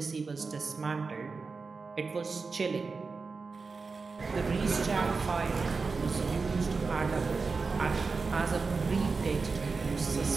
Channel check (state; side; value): quieter; left; 4.4 dB